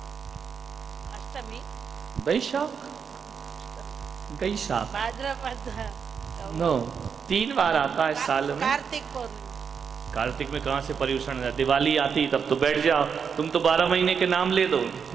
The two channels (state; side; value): quieter; left; 6.6 dB